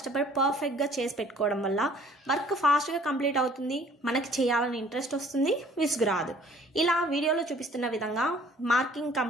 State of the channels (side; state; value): both; normal; correlation 0.55